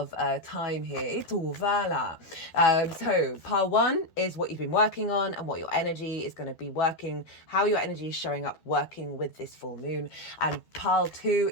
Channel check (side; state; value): right; late; 12 ms